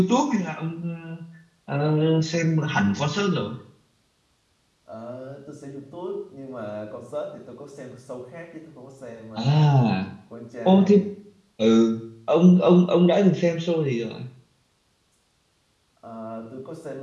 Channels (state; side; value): identical; both; correlation 1.00